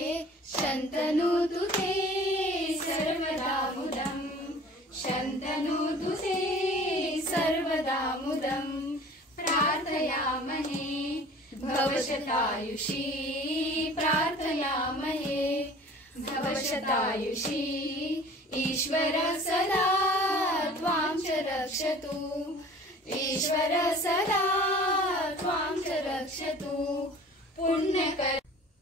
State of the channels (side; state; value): both; normal; correlation 0.46